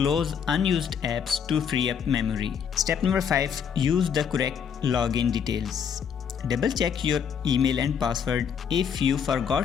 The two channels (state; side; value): quieter; right; 7.4 dB